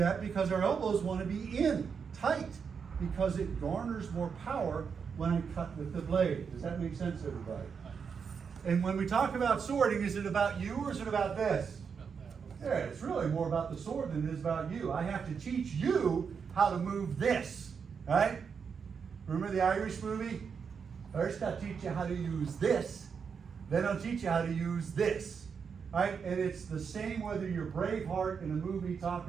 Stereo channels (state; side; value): quieter; left; 6.2 dB